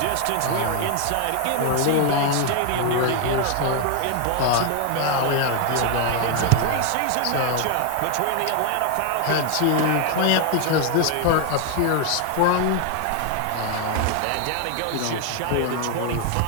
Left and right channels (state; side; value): different; both; correlation 0.00